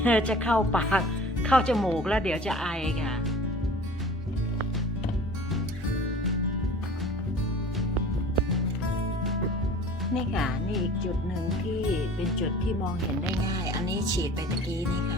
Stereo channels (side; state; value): both; normal; correlation 0.44